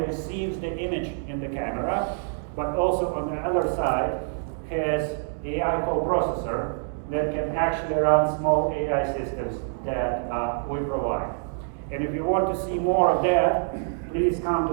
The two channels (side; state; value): left; silent; digital silence